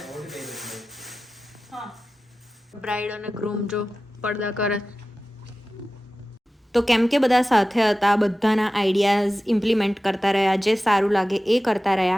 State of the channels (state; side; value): normal; both; correlation 0.95